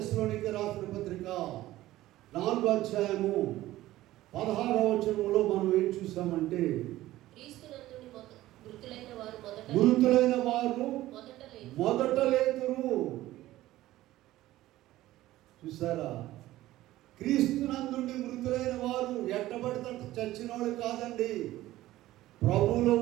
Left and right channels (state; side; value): quieter; left; 15.7 dB